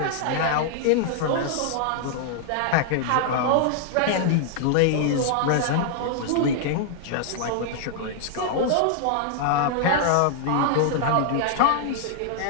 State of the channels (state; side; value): different; both; correlation -0.01